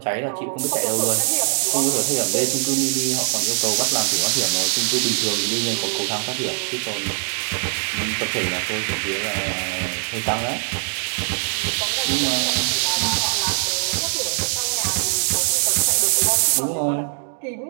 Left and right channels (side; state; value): left; silent; digital silence